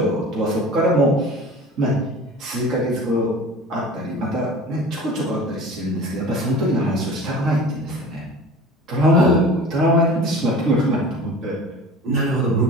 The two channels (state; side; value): normal; both; correlation 0.40